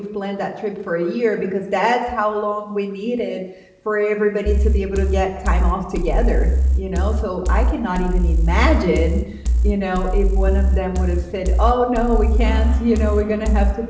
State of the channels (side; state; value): both; identical; correlation 1.00